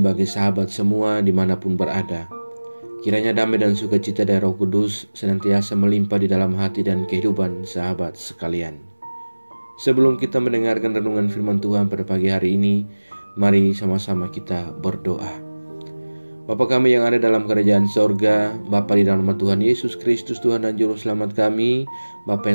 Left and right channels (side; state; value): both; inverted; correlation -1.00